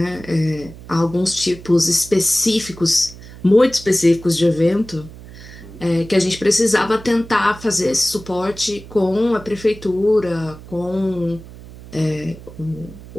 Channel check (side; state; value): right; noise; hum, 17 dB below the sound